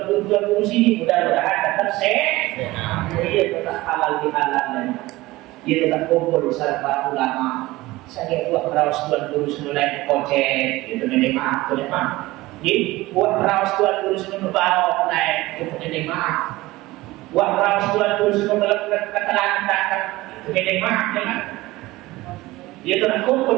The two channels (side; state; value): left; quieter; 19.1 dB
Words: guru sini mudah-mudahan tetap sehat. Ia tetap halal bihalal. Ia tetap kumpul bersama ulama. Saya buat raus tuan guru senulai kocek, itu nenek maaf, tuan maaf. Jadi buat raus tuan guru senulai bawa naik, itu nenek maaf. Buat raus tuan guru senulai ketelangan, itu nenek maaf, jangan. Dia telah